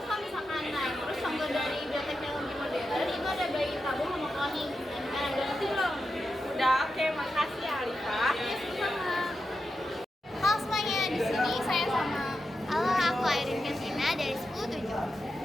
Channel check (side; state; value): both; normal; correlation 0.89